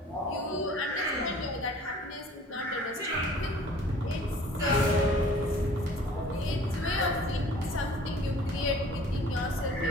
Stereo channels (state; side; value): normal; both; correlation 0.50